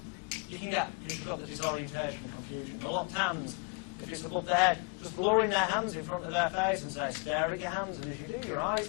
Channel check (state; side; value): quieter; right; 33.7 dB